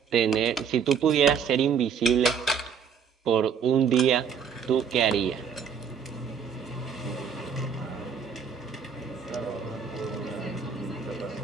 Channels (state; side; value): quieter; left; 6.8 dB